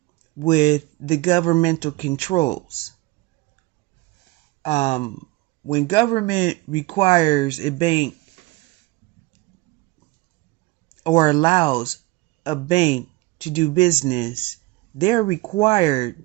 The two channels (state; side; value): quieter; left; 21.8 dB